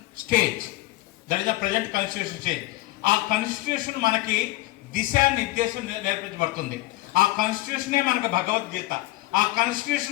stage. ఆ constitution మనకి దిశానిర్దేశం నేర్పించబడుతుంది. ఆ కాన్స్టిట్యూషనే మనకు భగవద్గీత. ఆ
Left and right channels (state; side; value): quieter; right; 18.6 dB